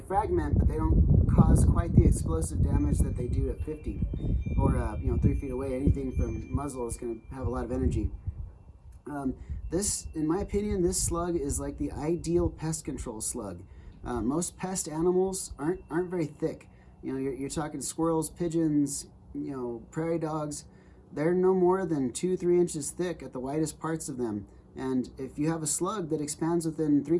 but they don't cause quite the explosive damage that they do at 50 or you know, 3 feet away. Anything from muzzle is going to have a lot of energy. This, in my opinion, this slug is like the ideal pest control slug. Most pest animals aren't very thick. You know, you're talking squirrels, pigeons, you know, prairie dogs. They're no more than 2-3 inches thick at the widest parts of them. And if you have a slug that expands within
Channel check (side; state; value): both; identical; correlation 1.00